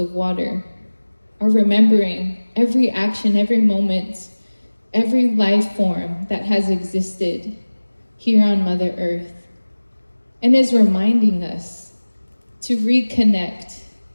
water are remembering every action, every moment, every life form that has existed here on Mother Earth, and is reminding us to reconnect,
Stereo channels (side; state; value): both; inverted; correlation -1.00